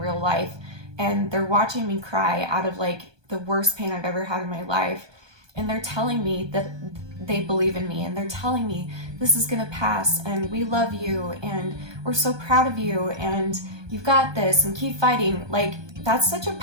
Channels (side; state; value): left; late; 1.2 ms